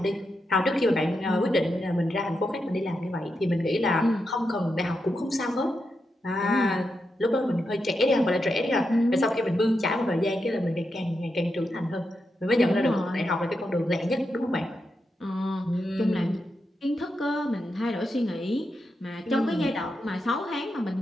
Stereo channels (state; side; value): normal; both; correlation 0.86